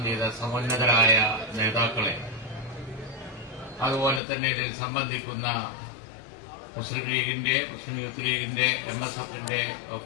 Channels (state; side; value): drops out; right; at 4.2 s